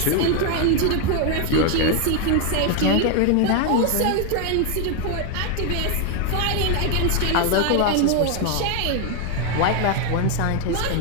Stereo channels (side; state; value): both; different; correlation 0.01